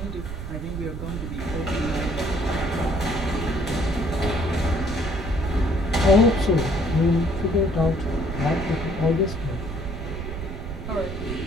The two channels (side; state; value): right; noise; rumble, 7 dB below the sound